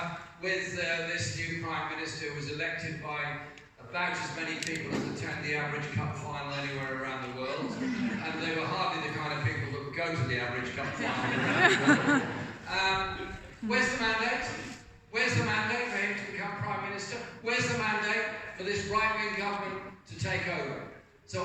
with this new Prime Minister who was elected by about as many people as attend the average cup final anywhere around the world, and they were hardly the kind of people that would go to the average cup final around the world. Where's the mandate? Where's the mandate for him to become Prime Minister? Where's the mandate for this right-wing government to take over? So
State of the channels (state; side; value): identical; both; correlation 1.00